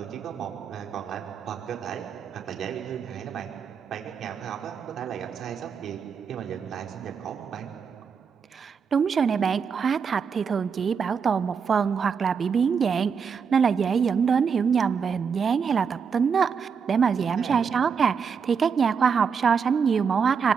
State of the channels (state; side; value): quieter; left; 6.3 dB